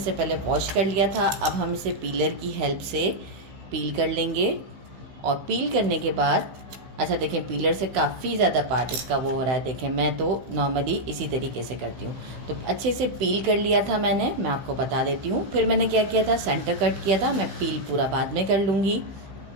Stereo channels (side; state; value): left; late; 16 ms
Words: पहले वॉश कर लिया था। अब हम इसे पीलर की हेल्प से पील कर लेंगे। और पील करने के बाद अच्छा देखें, पीलर से काफ़ी ज़्यादा पार्ट इसका वो हो रहा है। देखें, मैं तो नॉर्मली इसी तरीके से करती हूँ। तो अच्छे से पील कर लिया था मैंने, मैं आपको बता देती हूँ। फिर मैंने क्या किया था, सेंटर कट किया था। मैं पील पूरा बाद में कर लूँगी।